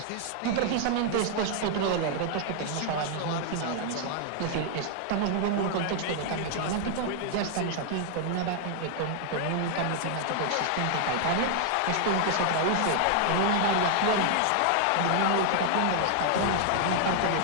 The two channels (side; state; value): both; different; correlation 0.00